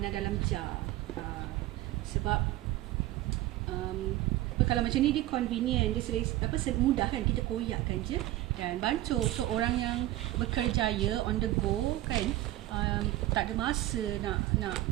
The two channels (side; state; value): left; quieter; 15.8 dB